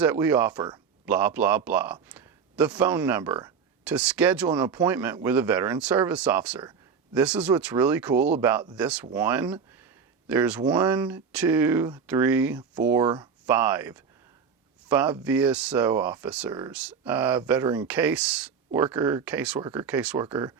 we offer, blah, blah, blah. The phone number to schedule an appointment with a veteran service officer. This is what's really cool about this one. There's 1, 2, 3, 4, 5 VSO officers, veteran caseworker,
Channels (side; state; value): left; quieter; 6.3 dB